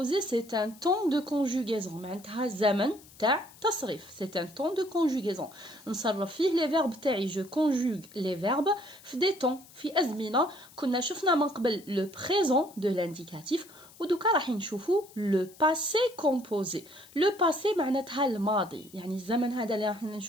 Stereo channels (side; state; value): left; noise; hiss, 23 dB below the sound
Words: c'est un temps de conjugaison. معناتها زمن تاع تصريف. C'est un temps de conjugaison. نصرف فيه les verbes تاعي. Je conjugue les verbes في des temps, في أزمنة. كنا شفنا من قبل le présent de l'indicatif. ودوكا راح نشوفوا le passé composé. Le passé معناتها الماضي. يعني الزمن هذا اللي راح